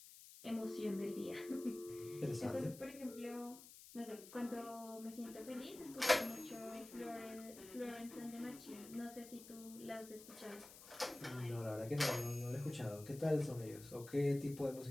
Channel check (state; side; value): noise; left; hiss, 16 dB below the sound